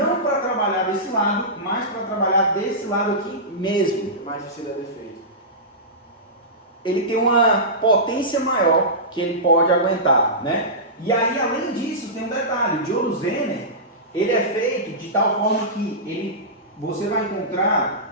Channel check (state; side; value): normal; both; correlation -0.17